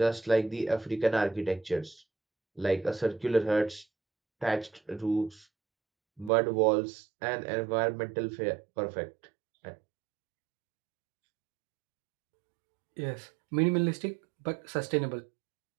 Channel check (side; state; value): left; drops out; at 6.3 s